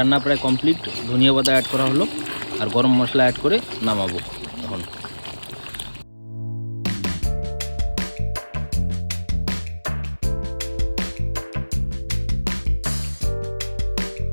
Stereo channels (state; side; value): inverted; both; correlation -1.00